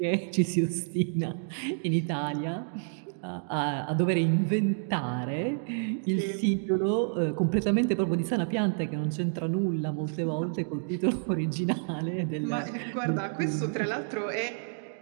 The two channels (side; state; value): left; silent; digital silence